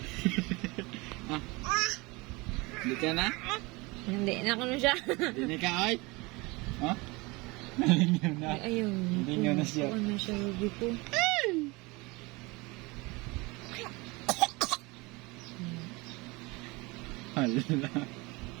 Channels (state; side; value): quieter; left; 24.6 dB